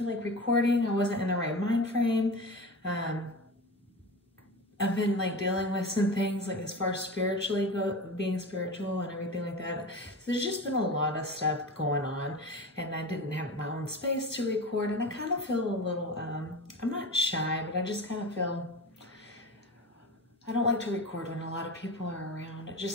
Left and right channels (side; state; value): both; normal; correlation 0.29